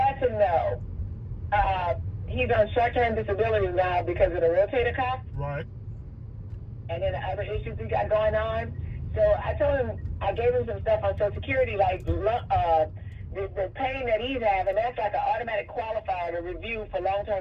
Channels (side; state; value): both; identical; correlation 1.00